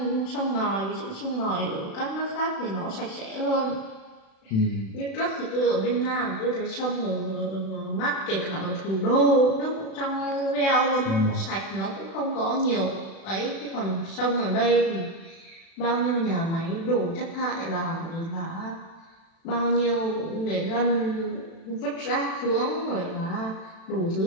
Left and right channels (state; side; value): late; right; 36 ms